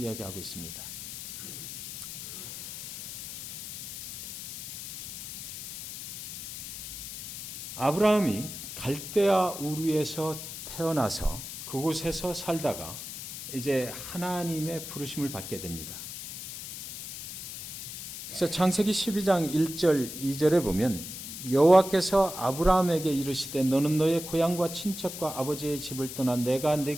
있습니다. 아브라함이 갈대아 우르에서 태어나서 그곳에서 살다가 이제 하나님의 부르심을 받게 됩니다. 그래서 창세기 12장 1절 2절에 보면, 여호와께서 아브라함에게 이르시되 너는 너의 고향과 친척과 아버지의 집을 떠나 내가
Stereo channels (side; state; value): left; noise; hiss, 9 dB below the sound